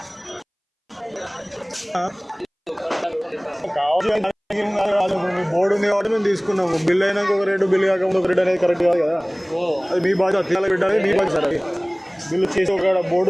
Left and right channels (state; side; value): identical; both; correlation 1.00